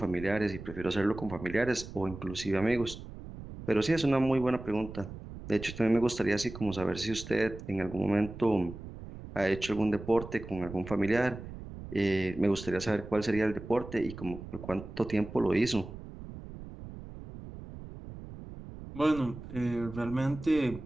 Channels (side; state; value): right; noise; rumble, 12 dB below the sound